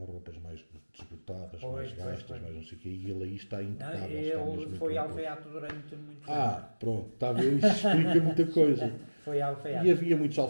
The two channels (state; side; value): inverted; both; correlation -1.00